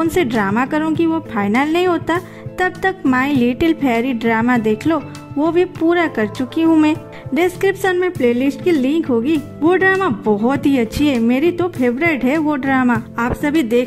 सी ड्रामा करूँगी वो फाइनल नहीं होता, तब तक माई लिटिल फेरी ड्रामा देख लो, वो भी पूरा कर चुकी हूँ मैं। डिस्क्रिप्शन में प्लेलिस्ट की लिंक होगी। वो ड्रामा बहुत ही अच्छी है, मेरी तो फेवरेट है वो ड्रामा। आप सभी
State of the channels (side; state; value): both; identical; correlation 1.00